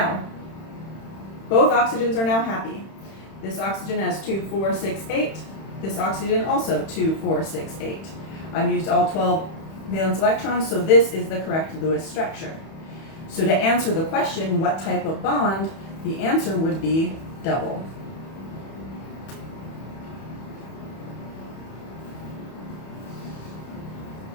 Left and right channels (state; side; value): late; right; 31 ms